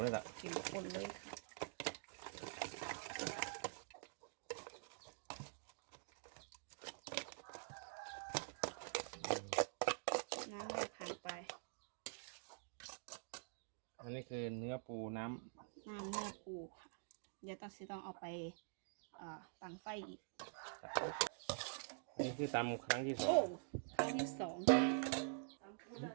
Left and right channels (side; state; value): left; silent; digital silence